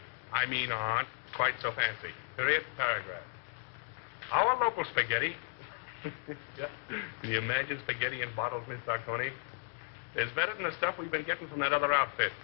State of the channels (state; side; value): silent; right; 55 dB below the other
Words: quite so fancy. Period, paragraph. Our local spaghetti. Yeah. Can you imagine spaghetti in bottles, Miss Sarconi? It's better than the stuff we've been getting from that other outfit.